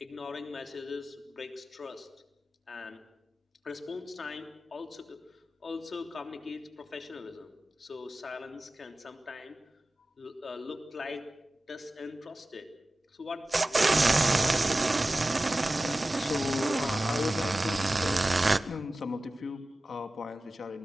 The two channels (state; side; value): normal; both; correlation 0.96